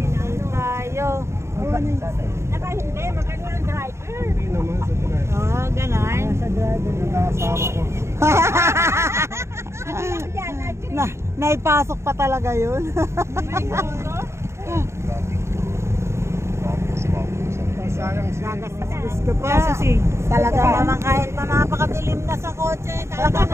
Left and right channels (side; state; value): left; late; 0.13 ms